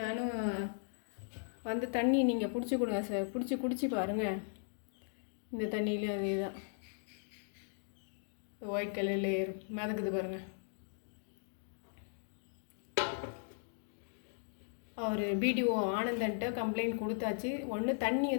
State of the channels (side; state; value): right; silent; digital silence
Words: நானும் வந்து தண்ணி நீங்கள் பிடிச்சி கொடுங்க சார், குடிச்சு பாருங்கள். இந்த தண்ணியிலையும் அதே தான் ஒயிட் கலரில் ஏறும், மிதக்குது பாருங்கள். அவர் பிடிஓ ஆனந்தன்ட்ட கம்ப்ளைண்ட் கொடுத்தாச்சு. ஒன்று தண்ணி